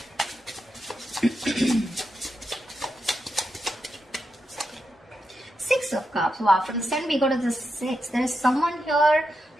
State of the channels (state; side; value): normal; both; correlation 0.86